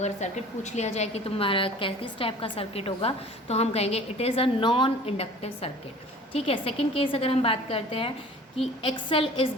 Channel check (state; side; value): normal; both; correlation 0.46